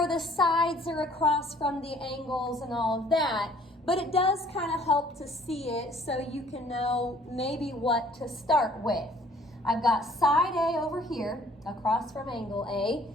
the sides are across from the angles and all of that. But it does kind of help to see it so you can know maybe what to start with. I've got side A over here, across from angle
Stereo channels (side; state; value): both; normal; correlation 0.57